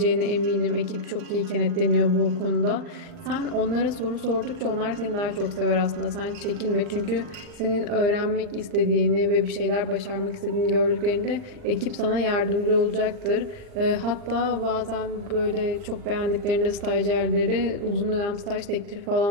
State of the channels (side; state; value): left; late; 39 ms